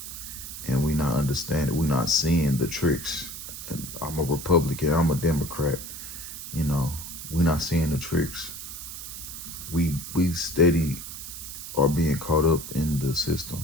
and we not understanding. We not seeing the tricks. And I'm a Republican. I'm a Democrat. We not seeing the tricks. We steady are being caught up in the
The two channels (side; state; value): right; noise; hiss, 10 dB below the sound